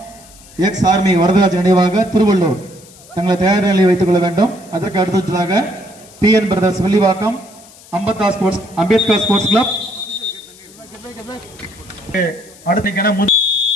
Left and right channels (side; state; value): left; noise; hiss, 23 dB below the sound